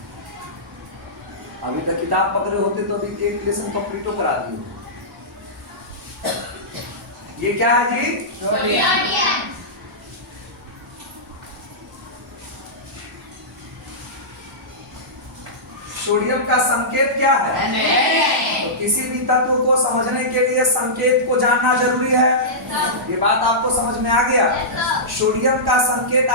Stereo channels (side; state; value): both; normal; correlation -0.16